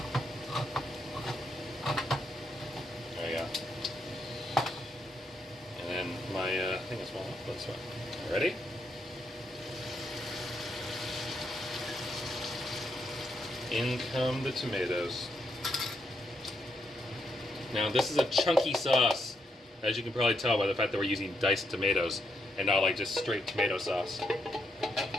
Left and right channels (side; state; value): both; normal; correlation 0.79